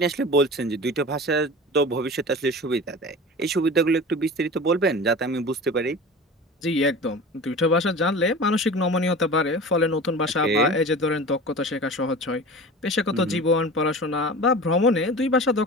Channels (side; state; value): both; normal; correlation 0.35